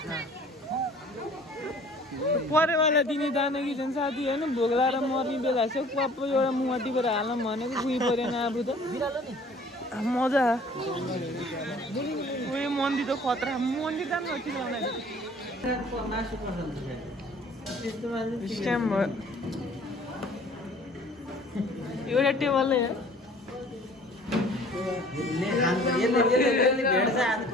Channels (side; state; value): both; normal; correlation 0.52